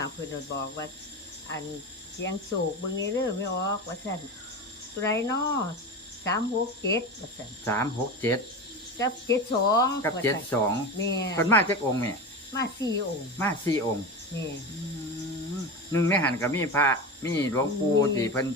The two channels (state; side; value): normal; both; correlation 0.24